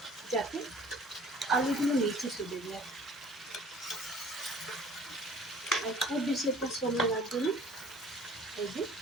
যাতে আলুগুলো নিচে চলে যায়। আর খুব বেশি একটা সময় লাগবে না। এই যে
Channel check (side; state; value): both; normal; correlation 0.51